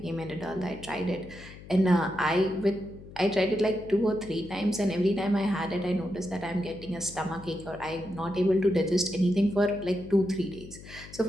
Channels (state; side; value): noise; left; hum, 17 dB below the sound